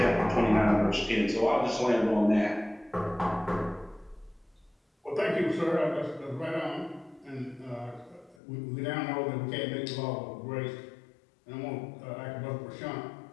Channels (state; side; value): drops out; right; at 8.3 s